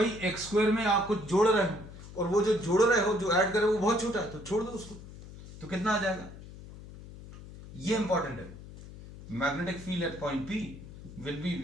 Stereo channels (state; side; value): noise; left; hum, 15 dB below the sound